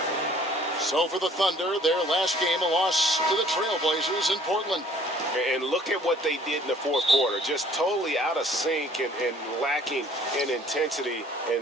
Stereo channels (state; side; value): normal; both; correlation 0.56